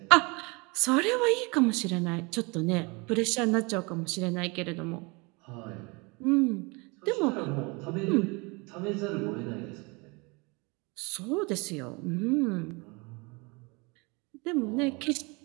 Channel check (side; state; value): left; quieter; 28.0 dB